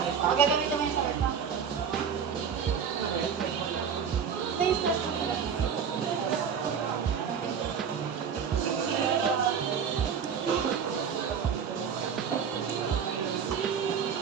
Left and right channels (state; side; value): quieter; left; 7.2 dB